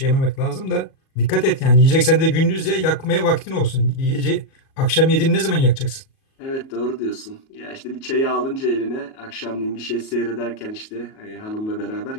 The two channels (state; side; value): late; right; 37 ms